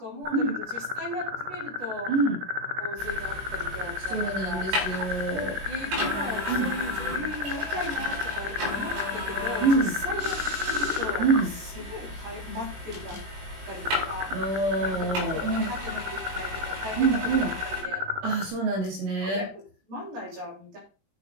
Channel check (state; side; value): late; left; 21 ms